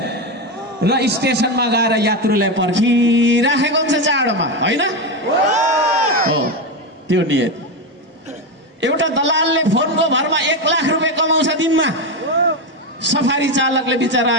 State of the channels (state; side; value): normal; both; correlation 0.13